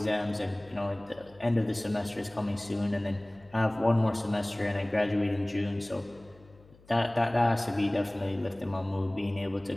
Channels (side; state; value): left; noise; hum, 26 dB below the sound